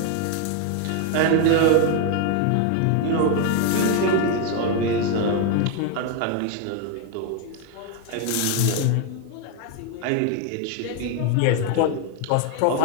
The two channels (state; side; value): different; both; correlation 0.01